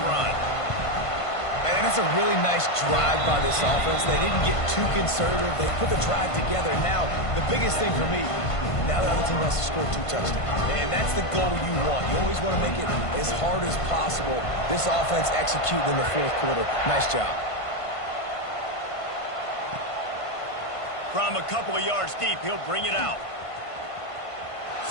run. And that's a really nice drive by this offense. They didn't get too conservative. They put the drive together. Now, the biggest thing for me, now the other team has to score 2 touchdowns. And that's the goal you want. You always want to make it as hard as possible. This offense executing in the 4th quarter. Nice job. From a couple of yards deep, he'll bring it out.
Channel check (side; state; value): right; late; 1.5 ms